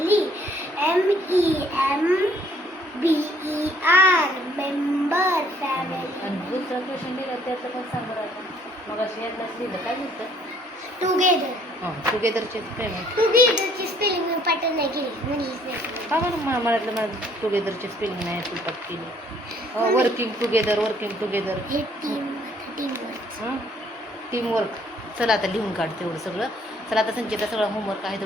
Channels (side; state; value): both; normal; correlation 0.62